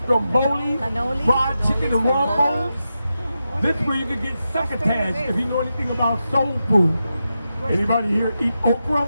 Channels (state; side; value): inverted; both; correlation -0.89